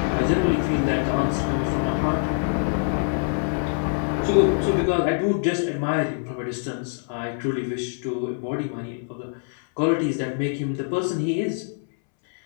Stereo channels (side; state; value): right; silent; 62 dB below the other